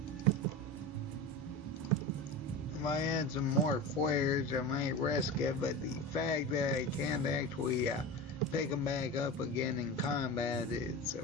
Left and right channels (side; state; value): both; normal; correlation 0.27